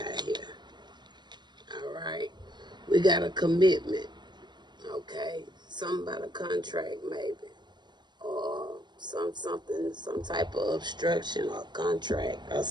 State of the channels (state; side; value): late; left; 0.21 ms